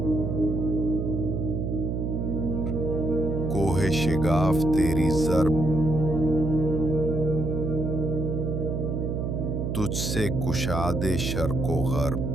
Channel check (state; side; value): noise; right; hum, 1 dB below the sound